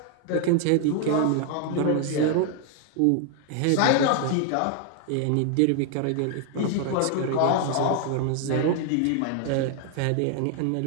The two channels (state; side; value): different; both; correlation 0.00